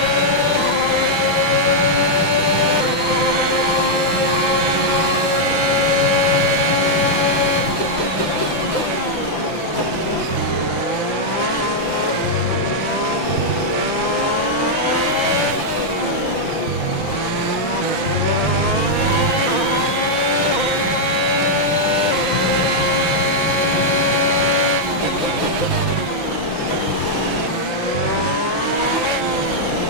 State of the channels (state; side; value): late; right; 5.9 ms